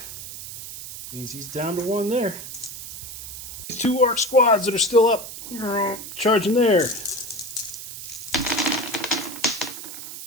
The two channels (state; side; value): noise; right; hiss, 10 dB below the sound